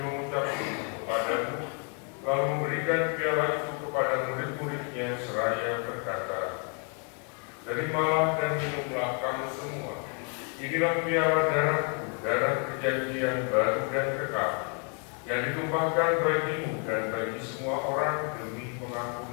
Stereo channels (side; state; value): right; quieter; 39.5 dB